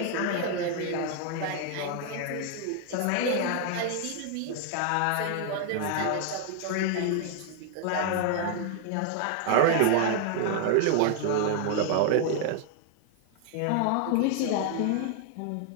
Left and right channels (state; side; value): different; both; correlation 0.00